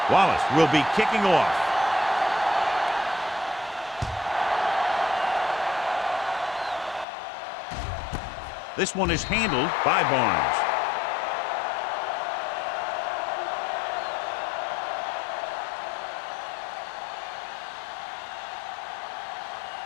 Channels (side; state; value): right; drops out; at 7.1 s